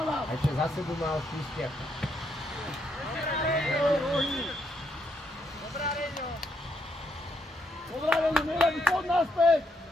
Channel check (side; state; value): both; normal; correlation 0.76